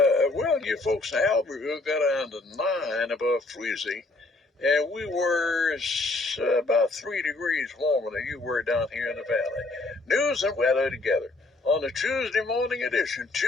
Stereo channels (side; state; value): right; quieter; 3.1 dB